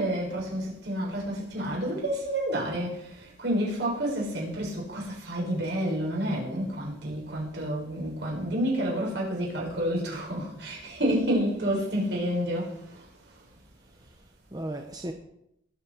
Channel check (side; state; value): both; normal; correlation 0.48